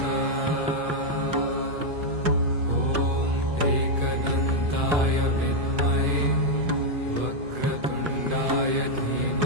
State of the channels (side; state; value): left; late; 2.5 ms